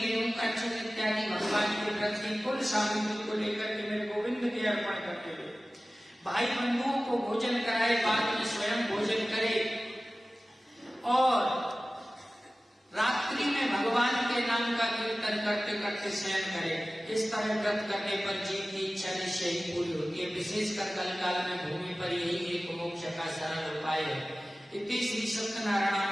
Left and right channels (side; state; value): both; normal; correlation 0.96